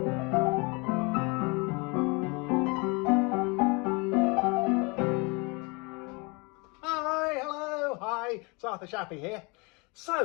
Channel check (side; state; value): right; quieter; 29.3 dB